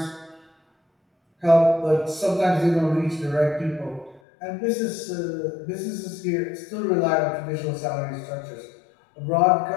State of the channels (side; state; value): right; drops out; at 4.2 s